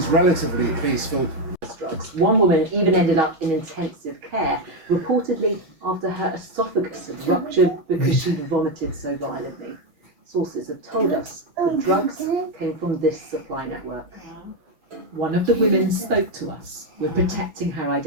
relatively peaceful. Drugs. One woman even ended up in intensive care, reportedly after her esophagus had ruptured because she vomited so violently. Sources have told us the drugs came from this supply network. One of the women spoke to us. We're protecting her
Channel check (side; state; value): left; late; 6.3 ms